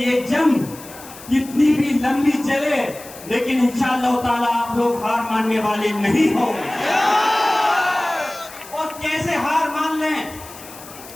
जंग कितनी भी लंबी चले, लेकिन इंशाअल्लाह ताला आप लोग हार मानने वाले नहीं हो। और कैसे हार मान लें,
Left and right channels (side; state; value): left; noise; hiss, 17 dB below the sound